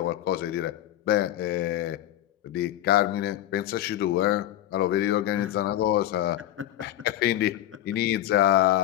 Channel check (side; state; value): right; quieter; 13.1 dB